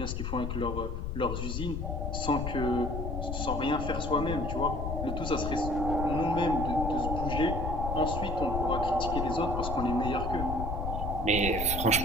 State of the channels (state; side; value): noise; left; rumble, 3 dB below the sound